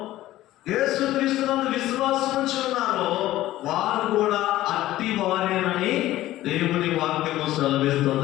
యేసుక్రీస్తునందు విశ్వాసం ఉంచి ఉన్నారో, వారు కూడా అట్టి వారేనని దేవుని వాక్యము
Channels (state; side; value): quieter; right; 15.2 dB